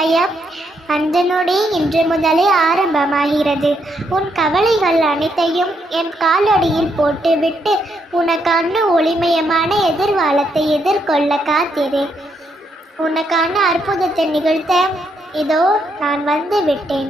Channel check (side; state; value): both; normal; correlation 0.77